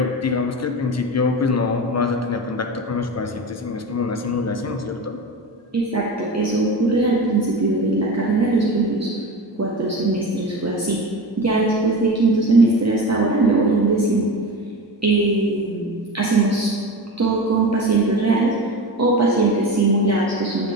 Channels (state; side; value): normal; both; correlation 0.27